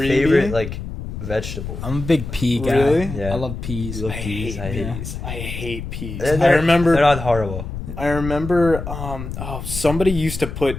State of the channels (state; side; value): noise; left; rumble, 7 dB below the sound